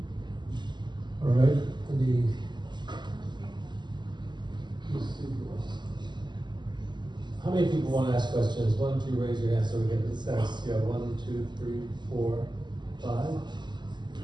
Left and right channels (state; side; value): late; left; 0.21 ms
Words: All right, how many people want to ask questions? Why don't you raise your hand so we get the sense? Yeah, 1, 2, 3, 4, 5?